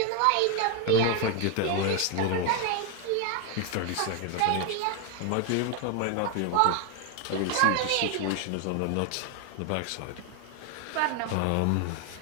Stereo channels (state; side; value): different; both; correlation 0.00